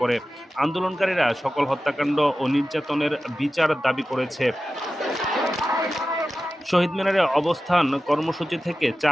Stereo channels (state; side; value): normal; both; correlation 0.94